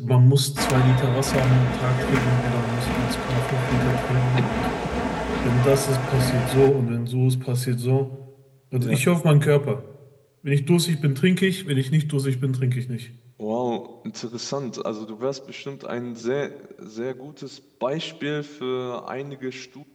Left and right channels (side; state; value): both; identical; correlation 1.00